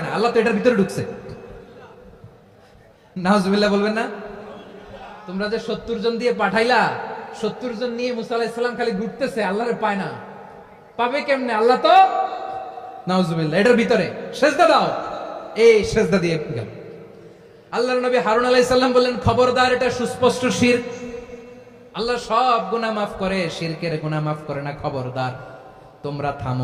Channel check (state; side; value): identical; both; correlation 1.00